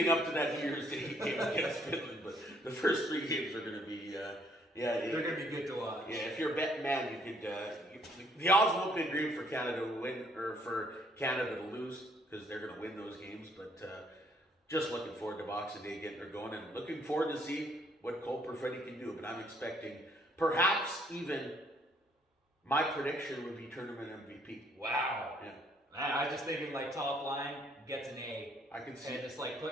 up to that New Year's Day game against Finland. But the first 3 games are going to be, they're going to be good to watch. Yeah, if you're a betting man, you could, the odds won't be great for Canada to win, or for Canada to lose, because they're going to win those games. But just looking forward to Boxing Day getting her going, and looking forward to see what Cole Perfetti can do. But I'm expecting, perhaps even, my prediction would be tournament MVP. Wow. Yeah. I was just thinking like top line gets an A. I can see. And just like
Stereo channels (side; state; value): both; normal; correlation 0.66